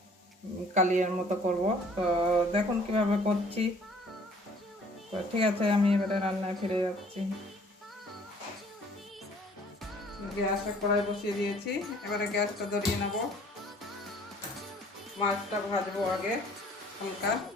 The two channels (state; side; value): normal; both; correlation 0.56